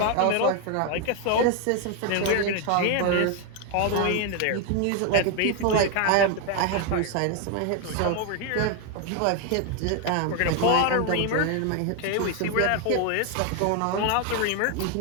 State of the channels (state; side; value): different; both; correlation 0.01